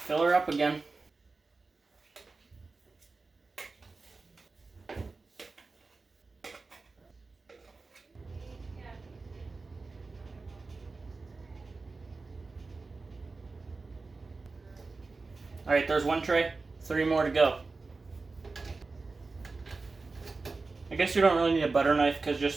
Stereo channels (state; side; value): quieter; left; 3.9 dB